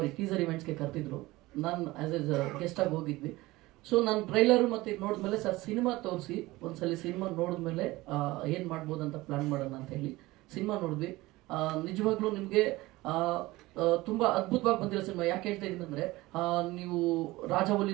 ಇವೆಂಟ್ಸ್ಗೆ ಕರೆದಿದ್ರು. ನಾನು ಆಸ್ ಎ ಗೆಸ್ಟ್ ಆಗಿ ಹೋಗಿದ್ವಿ. ಸೊ ನಾನು ಟ್ರೈಲರ್ ಮತ್ತೆ ನೋಡಿದ್ಮೇಲೆ ಸರ್ ಸಿನಿಮಾ ತೋರಿಸಿ ಒಂದ್ಸಲಿ ಸಿನಿಮಾ ನೋಡಿದ್ಮೇಲೆ ಏನ್ ಮಾಡ್ಬೋದು ಅಂತ ಪ್ಲಾನ್ ಮಾಡೋಣ ಅಂತ ಹೇಳಿ ಸಿನಿಮಾ ನೋಡಿದ್ವಿ. ನಿಜವಾಗ್ಲೂ ನಿಮ್ಗೆ ತುಂಬಾ ಅದ್ಭುತವಾಗಿ ಬಂದಿರೋ ಸಿನಿಮಾ. ಯಾಕೆ ಹೇಳ್ತಾ ಇದೀನಿ ಅಂದ್ರೆ, ನೀವು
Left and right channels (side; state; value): left; quieter; 19.6 dB